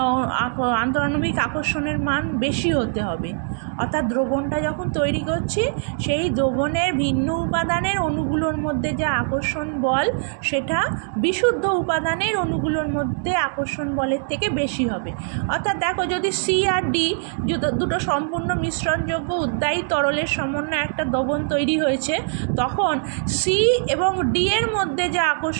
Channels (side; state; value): left; silent; 64 dB below the other